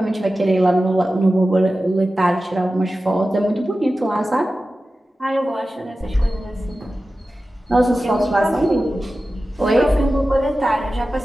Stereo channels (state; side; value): normal; both; correlation 0.94